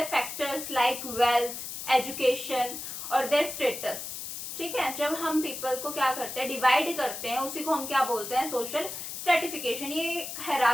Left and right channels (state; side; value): noise; left; hiss, 7 dB below the sound